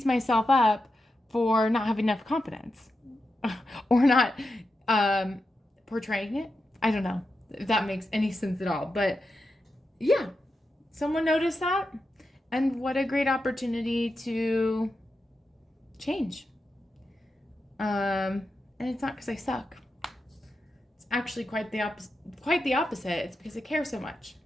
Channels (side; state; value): both; normal; correlation 0.89